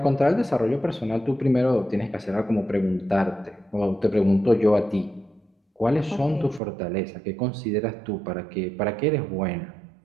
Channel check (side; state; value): left; drops out; at 6.6 s